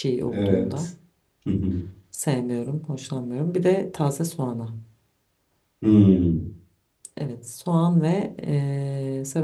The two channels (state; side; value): identical; both; correlation 1.00